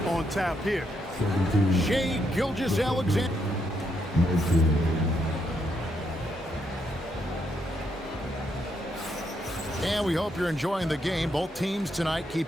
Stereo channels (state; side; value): normal; both; correlation 0.78